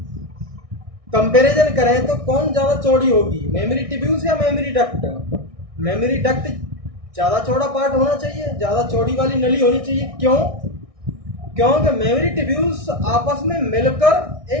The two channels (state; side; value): late; left; 1.6 ms